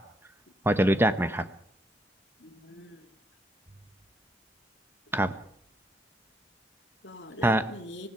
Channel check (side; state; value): both; normal; correlation 0.75